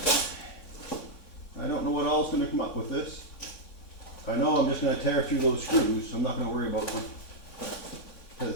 I don't know what all is going to come up with this. I know I'm just going to tear through those screws, so I'm not going to worry about them.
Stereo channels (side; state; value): right; late; 3.6 ms